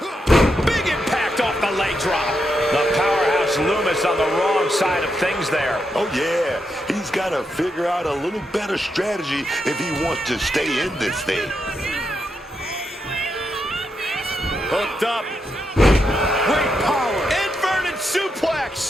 Big impact off the leg drop. The powerhouse Loomis on the wrong side of things there. Oh, yeah. He's got to figure out a little better strategy if he wants to stay in this thing. Hooked up. Great power. Inverted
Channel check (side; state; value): both; normal; correlation 0.83